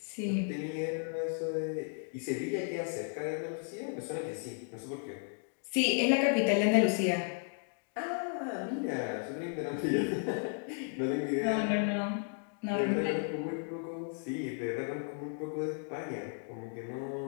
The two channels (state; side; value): silent; right; 55 dB below the other